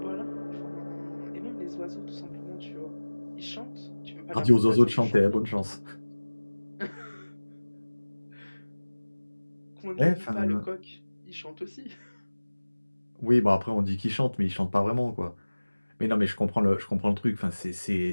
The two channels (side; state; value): both; inverted; correlation -1.00